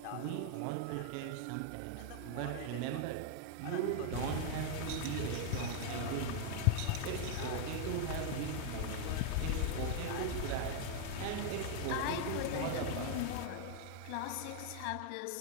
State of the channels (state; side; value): different; both; correlation 0.00